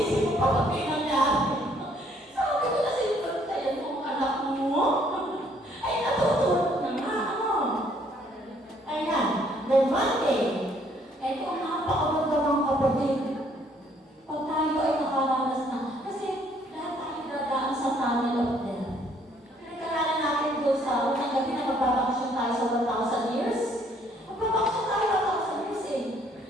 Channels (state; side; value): normal; both; correlation 0.64